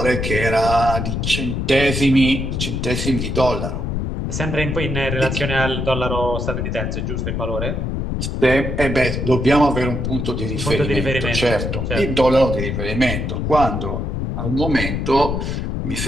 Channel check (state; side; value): noise; left; rumble, 2 dB below the sound